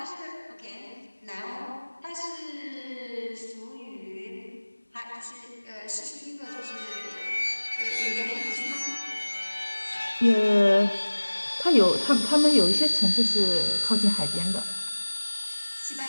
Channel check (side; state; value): both; inverted; correlation -1.00